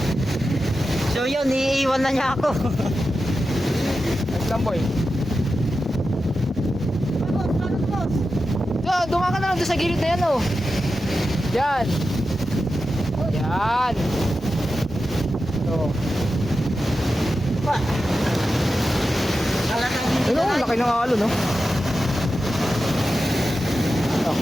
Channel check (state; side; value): normal; both; correlation 0.91